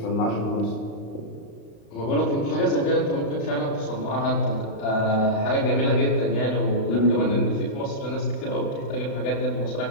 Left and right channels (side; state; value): right; late; 35 ms